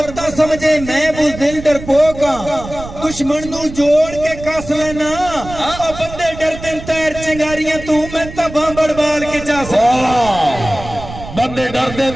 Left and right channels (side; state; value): right; noise; rumble, 12 dB below the sound